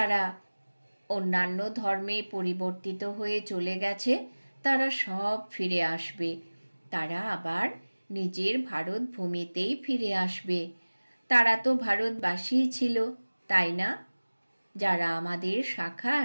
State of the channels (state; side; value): inverted; both; correlation -1.00